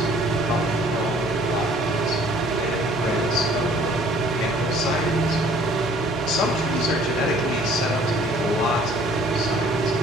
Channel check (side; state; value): both; normal; correlation 0.55